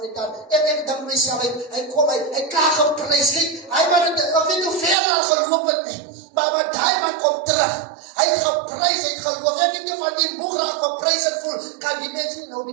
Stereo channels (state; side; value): drops out; left; at 5.0 s